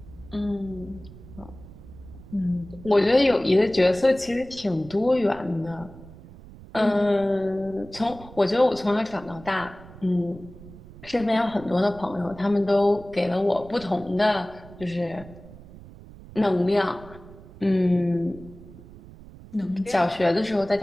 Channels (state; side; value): noise; right; rumble, 18 dB below the sound